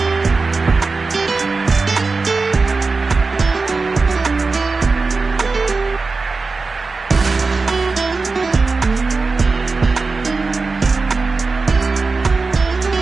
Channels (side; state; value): left; quieter; 4.0 dB